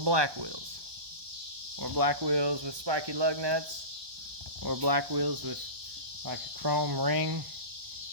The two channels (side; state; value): left; late; 1.2 ms